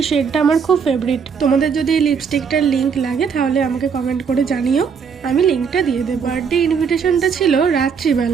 শেডটা আমার খুব ফেভারিট। তোমাদের যদি এই লিপস্টিকটার লিঙ্ক লাগে তাহলে আমাকে কমেন্ট করে জানিও, আমি লিঙ্কটা দিয়ে দেবো। বার্থডে ইনভিটেশনটা ছিল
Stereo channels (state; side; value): quieter; left; 6.3 dB